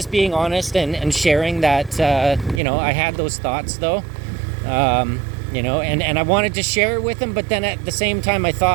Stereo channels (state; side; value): drops out; left; at 2.6 s